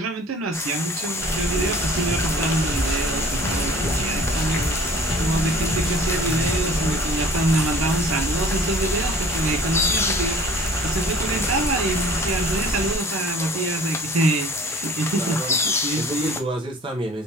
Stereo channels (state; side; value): normal; both; correlation 0.49